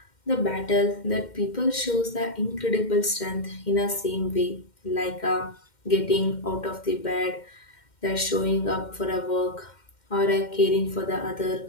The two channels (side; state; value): right; late; 2.1 ms